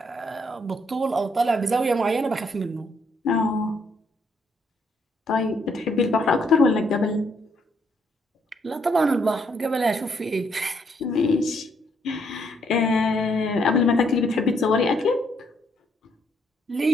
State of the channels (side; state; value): both; normal; correlation 0.72